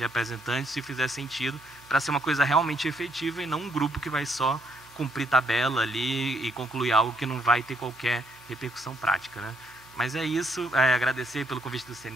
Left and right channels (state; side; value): normal; both; correlation 0.71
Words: se fizer sentido, para ser uma coisa realmente efetiva e não um grupo que vai só cumprir tabela ali e concluir algo que não vai ter qualquer repercussão prática, né? Mas é isso, agradecer pelo convite do